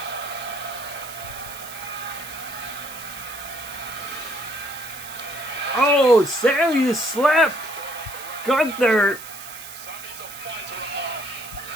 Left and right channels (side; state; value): right; noise; hiss, 13 dB below the sound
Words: Oh, Sammy slapped Gunther.